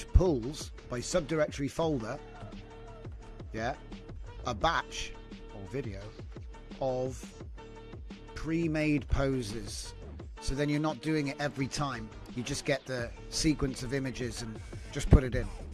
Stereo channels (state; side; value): identical; both; correlation 1.00